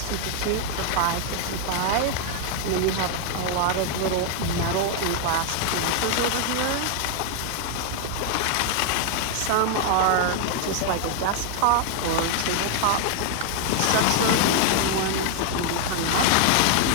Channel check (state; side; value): different; both; correlation 0.00